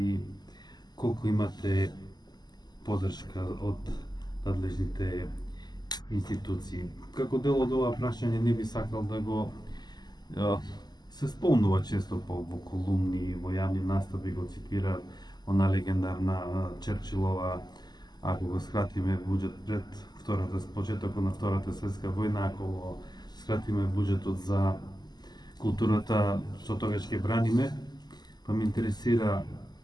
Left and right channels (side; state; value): right; late; 0.20 ms